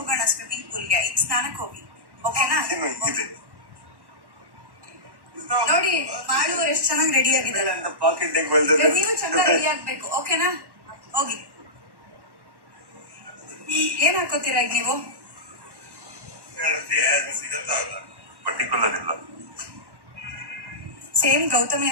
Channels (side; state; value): left; late; 1.1 ms